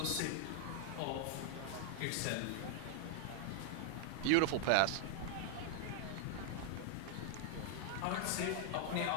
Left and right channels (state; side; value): different; both; correlation 0.00